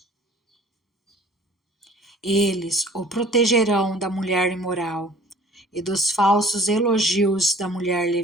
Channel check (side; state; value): both; normal; correlation 0.51